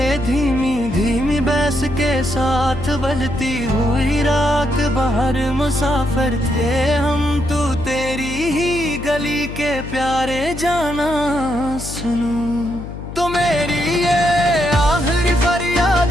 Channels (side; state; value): left; noise; hum, 10 dB below the sound